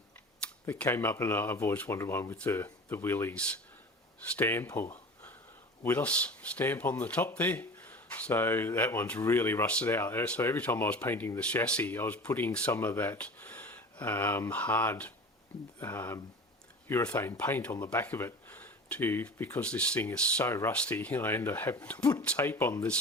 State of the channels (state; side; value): normal; both; correlation 0.37